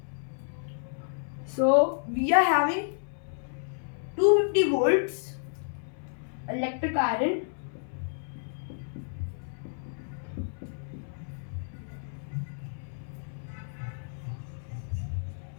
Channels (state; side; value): silent; right; 57 dB below the other